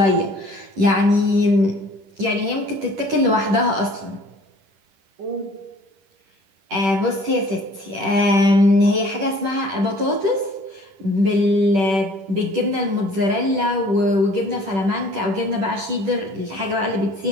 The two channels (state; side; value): late; left; 10 ms